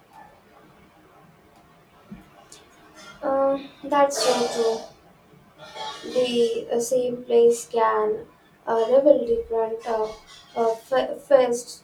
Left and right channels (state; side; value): identical; both; correlation 1.00